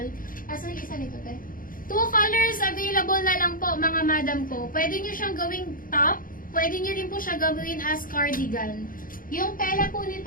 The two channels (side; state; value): right; late; 0.40 ms